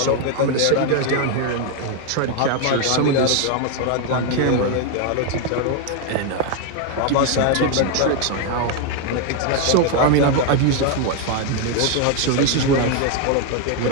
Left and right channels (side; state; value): both; different; correlation 0.01